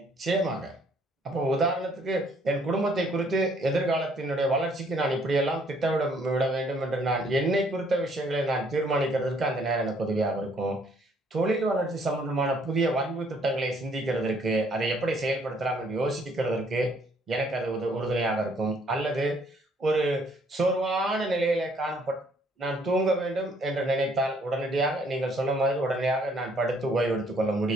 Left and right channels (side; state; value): both; normal; correlation 0.65